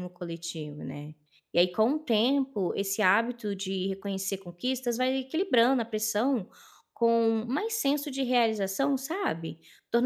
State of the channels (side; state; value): both; identical; correlation 1.00